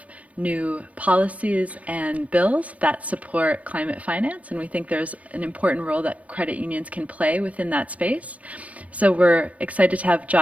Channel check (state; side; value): late; left; 0.067 ms